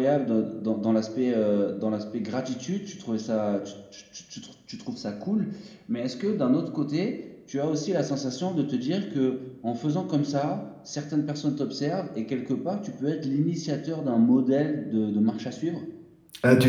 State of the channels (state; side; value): identical; both; correlation 1.00